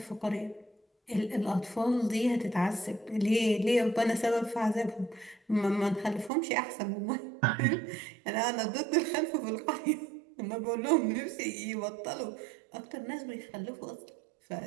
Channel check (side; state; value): left; drops out; at 6.3 s